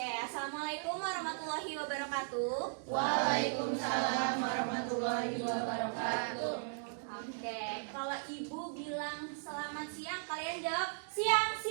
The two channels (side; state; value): left; silent; digital silence